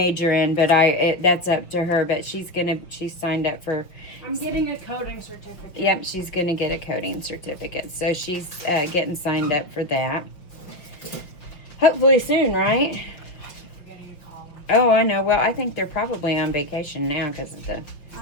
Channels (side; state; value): right; late; 5.6 ms